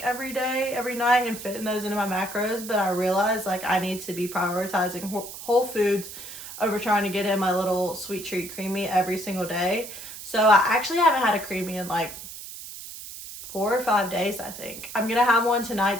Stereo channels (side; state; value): right; noise; hiss, 12 dB below the sound